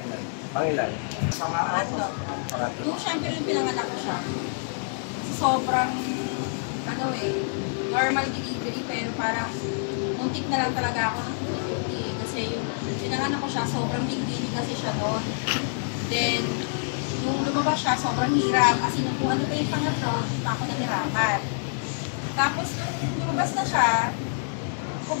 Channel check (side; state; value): right; silent; digital silence